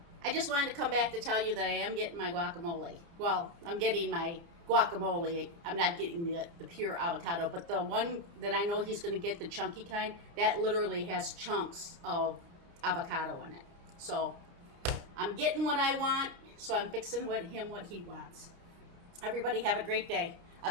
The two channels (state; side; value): late; left; 29 ms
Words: I just wanted to come back to tell you that I am getting my guacamole. Well, I'm getting my guacamole. I'm not getting the pure avocado, but the one that I know he's going to get, the chunky kind, that literally has chunks of avocado in it. So I'm getting what I want, so I'm fixing what he wants. Everybody have a great day.